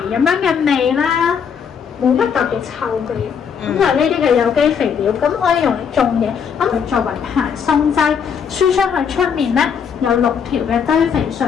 咁樣嘅味啦，冇乜特別臭味。咁就係呢啲嘅有機肥料，咁可以用嚟種嘢，咁佢作為排鬆劑，輸出去出面咧有6條嘅堆肥隧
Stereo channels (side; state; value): right; quieter; 7.0 dB